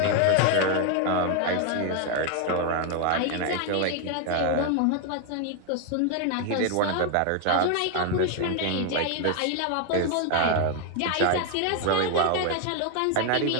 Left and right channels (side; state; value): both; different; correlation 0.01